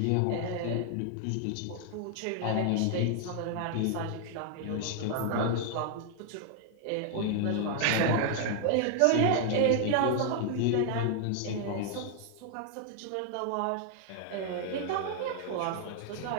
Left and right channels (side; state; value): both; different; correlation 0.00